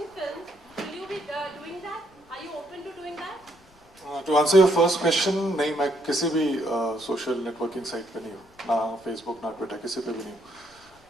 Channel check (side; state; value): left; noise; rumble, 30 dB below the sound